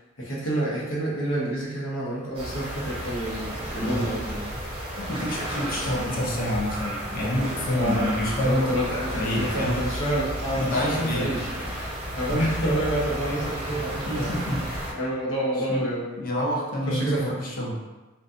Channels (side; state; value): both; normal; correlation 0.48